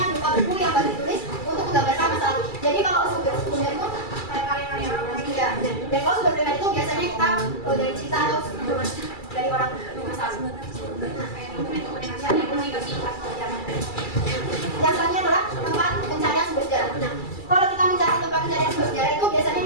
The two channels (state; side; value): late; right; 2.3 ms